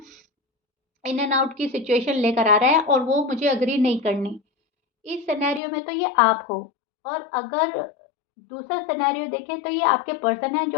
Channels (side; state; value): right; drops out; at 5.6 s